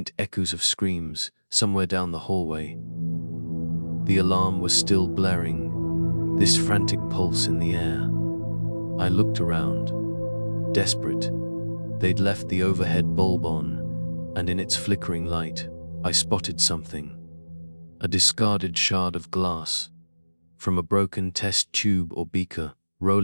echoes of screams somewhere down the hallway. The alarm was still blaring, this frantic pulse in the air. I looked around, desperate. They'd left the overhead bulb on, and in its flickering light, I spotted something. A discarded shard of glass, from a broken test tube or beaker,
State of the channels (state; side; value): inverted; both; correlation -1.00